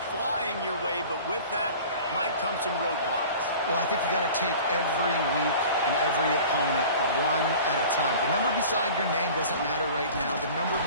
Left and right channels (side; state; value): both; inverted; correlation -0.42